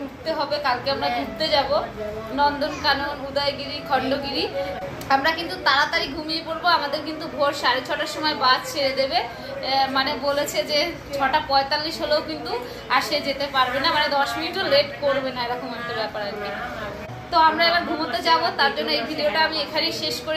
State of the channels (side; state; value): both; identical; correlation 1.00